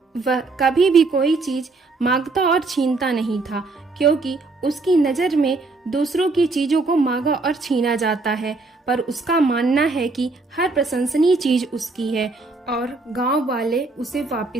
वह कभी भी कोई चीज मांगता और छीनता नहीं था, क्योंकि उसकी नजर में दूसरों की चीजों को मांगा और छीना जाता है, पर उसका मानना है कि हर प्रशंसनीय चीज उसकी है और गांव वाले उसे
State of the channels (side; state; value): left; quieter; 3.6 dB